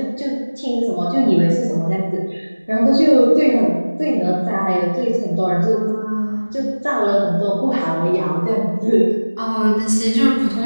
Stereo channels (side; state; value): both; inverted; correlation -1.00